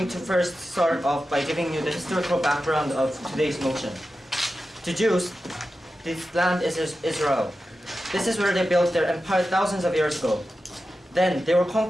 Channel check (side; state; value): both; normal; correlation 0.92